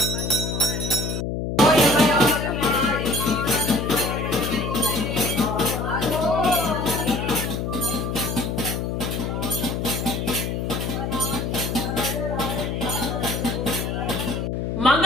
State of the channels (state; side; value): noise; left; hum, 2 dB below the sound